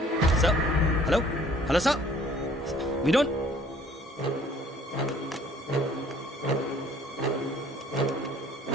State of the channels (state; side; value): normal; both; correlation 0.56